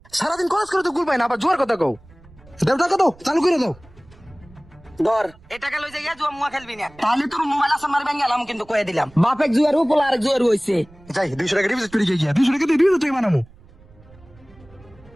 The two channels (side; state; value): right; noise; rumble, 25 dB below the sound